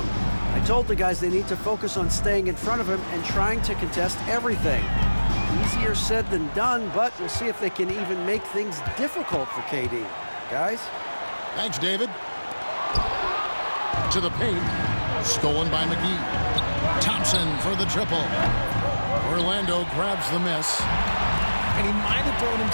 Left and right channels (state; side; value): inverted; both; correlation -1.00